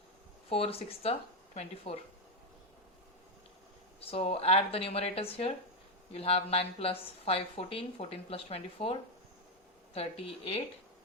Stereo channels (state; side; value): normal; both; correlation 0.07